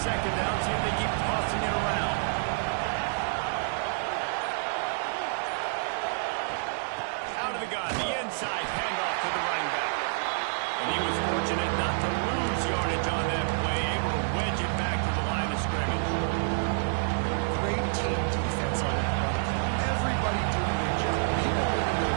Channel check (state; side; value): silent; left; digital silence